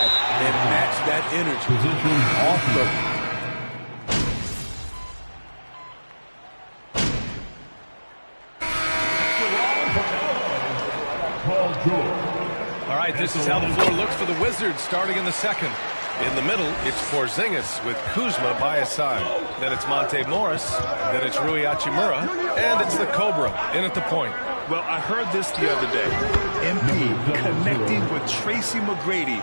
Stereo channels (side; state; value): both; inverted; correlation -1.00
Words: and match that energy. Off the All right, this is how the floor looks for the Wizards starting in the second. In the middle, it's Porzingis with Kuzma by his side. Then it's Monte Morris. Then it's Rui Hachimura. And it's the Cobra in at the point. Well, I heard this the other day. MP connecting with Tracy McGrady.